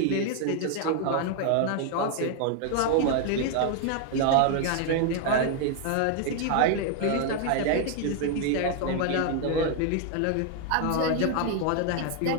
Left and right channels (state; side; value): different; both; correlation 0.00